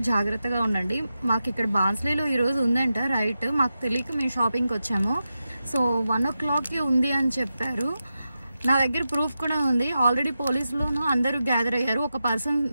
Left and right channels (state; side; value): inverted; both; correlation -0.90